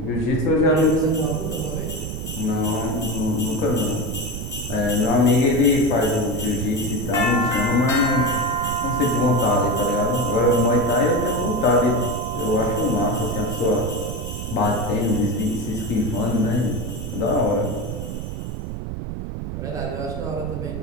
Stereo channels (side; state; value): right; noise; rumble, 6 dB below the sound